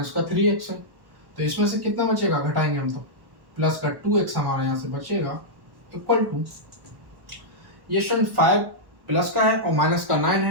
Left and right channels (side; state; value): left; late; 1.1 ms